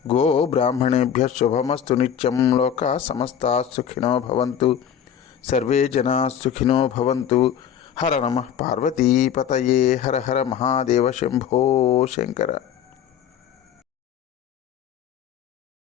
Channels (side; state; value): right; quieter; 8.9 dB